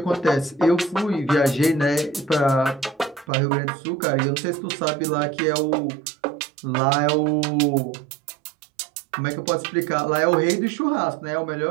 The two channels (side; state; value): left; drops out; at 3.2 s